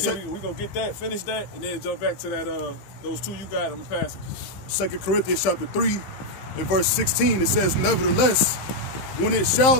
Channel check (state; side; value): late; right; 15 ms